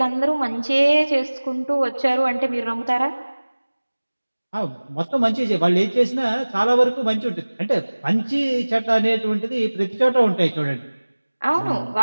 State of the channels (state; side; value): inverted; both; correlation -1.00